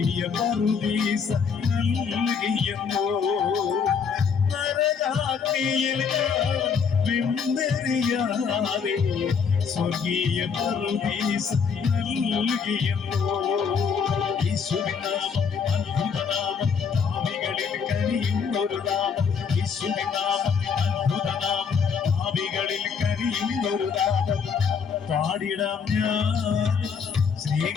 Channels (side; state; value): right; quieter; 6.2 dB